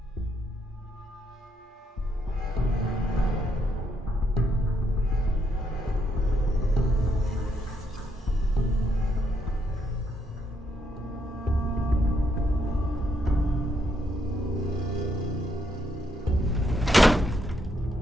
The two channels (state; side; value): normal; both; correlation 0.76